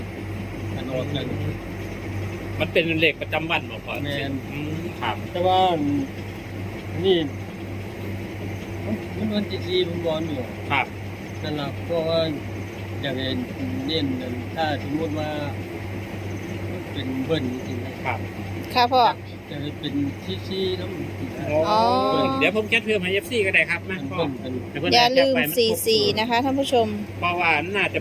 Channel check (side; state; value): both; identical; correlation 1.00